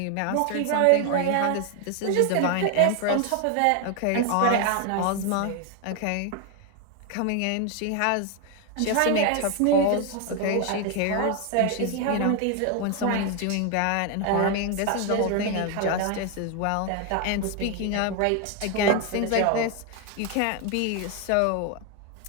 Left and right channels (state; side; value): different; both; correlation 0.01